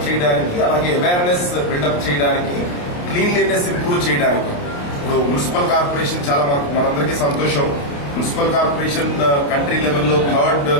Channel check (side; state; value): right; late; 28 ms